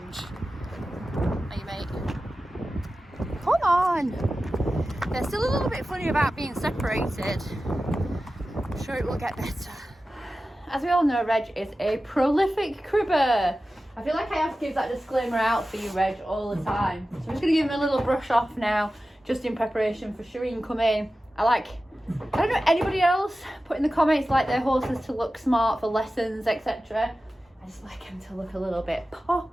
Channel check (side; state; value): both; normal; correlation 0.94